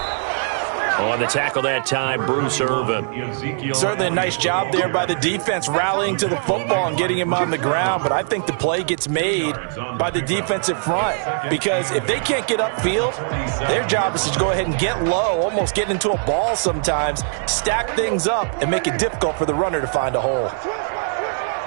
On the tackle that time, Bruce Irvin. Certainly a nice job there by the defense, rallying to the football and getting him on the ground. But I think the play gets made by the defensive front, because if they can't get upfield, their job is to go ahead and get low, almost get into a ball sometimes, stack things up, and make it difficult for the runner to find a hole.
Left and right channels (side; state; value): left; silent; digital silence